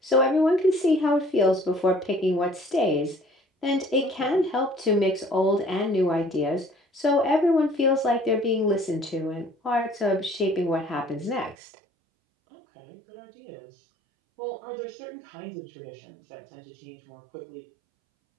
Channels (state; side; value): drops out; left; at 11.6 s